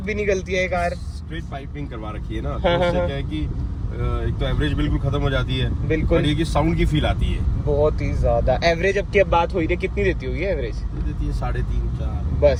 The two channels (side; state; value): both; identical; correlation 1.00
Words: भी निकलती है कार। स्ट्रेट पाइपिंग करवा रखी है ना, तो उससे क्या है कि एक तो एवरेज बिल्कुल खत्म हो जाती है। बिल्कुल। ये कि साउंड की फील आती है बहुत ही ज्यादा। एवरेज अब की अब बात हो रही है, कितनी देती होगी एवरेज? देती है 3.5-4